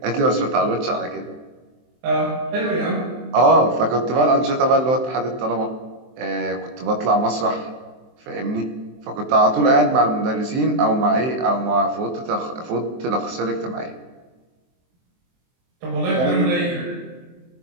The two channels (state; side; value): late; left; 23 ms